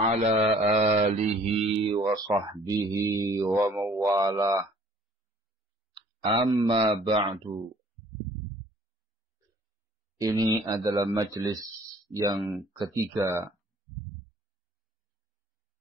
ala alihi wa sahbihi wa mawalah. Amma ba'du. Ini adalah majlis yang ketiga,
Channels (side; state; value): both; normal; correlation 0.55